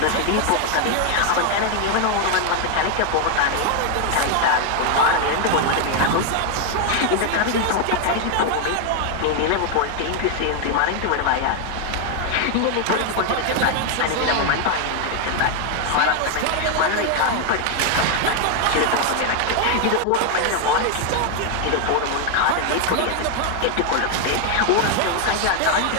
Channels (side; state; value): both; different; correlation 0.01